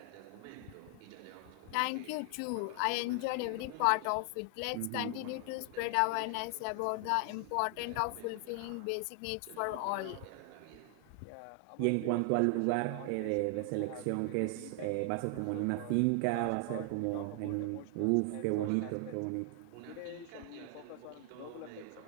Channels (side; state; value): both; different; correlation 0.00